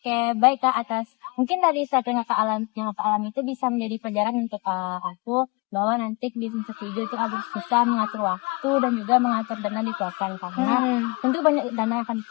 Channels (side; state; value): right; quieter; 28.0 dB